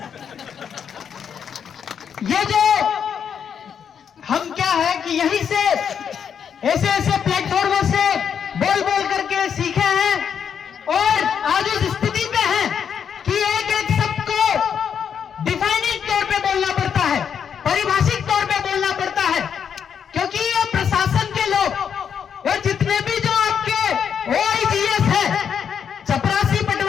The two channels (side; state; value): right; quieter; 7.7 dB